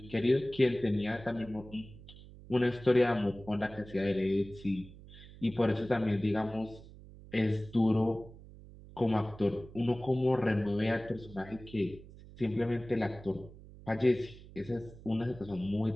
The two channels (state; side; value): noise; right; hum, 18 dB below the sound